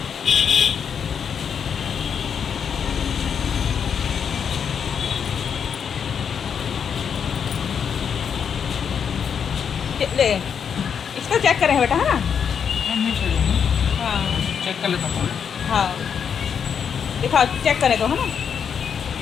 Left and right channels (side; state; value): right; quieter; 7.3 dB